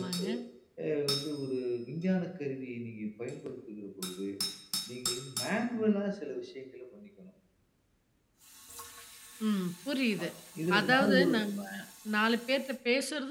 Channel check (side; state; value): both; identical; correlation 1.00